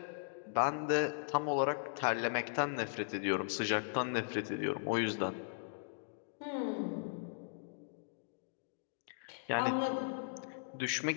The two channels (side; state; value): right; silent; digital silence